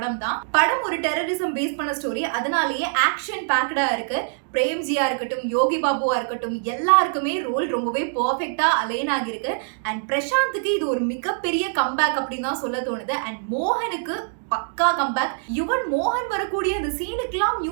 தான். படம் ஒரு டெரரிசம் பேஸ் பண்ண ஸ்டோரி, அதனாலேயே ஆக்ஷன் பேக்டா இருக்கு. பிரேம்ஜியா இருக்கட்டும், யோகி பாபுவா இருக்கட்டும், எல்லாருக்குமே ரோல் ரொம்பவே பர்ஃபெக்டா அலைன் ஆகிருக்கு. அண்ட் பிரசாந்துக்கு இது ஒரு மிகப்பெரிய கம்பேக் அப்படின்னு தான் சொல்ல தோணுது. அண்ட் மோகனுக்கு பக்கா கம்பேக். யுவன் மோகன் வரக்கூடிய அந்த சீனுக்கெல்லாம்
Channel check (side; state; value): left; silent; digital silence